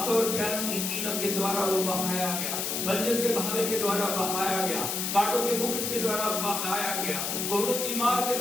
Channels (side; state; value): left; noise; hiss, 1 dB below the sound